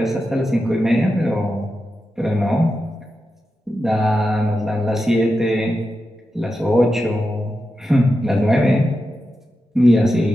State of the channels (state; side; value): normal; both; correlation 0.89